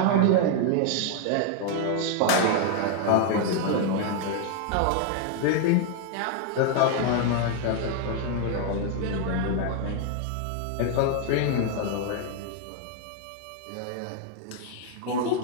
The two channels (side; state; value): both; different; correlation 0.00